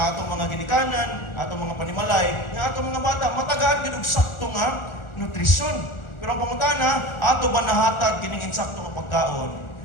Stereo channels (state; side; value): late; right; 1.4 ms